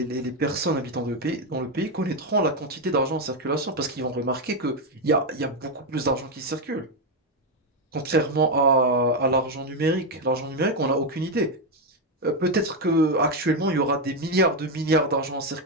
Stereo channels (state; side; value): normal; both; correlation 0.06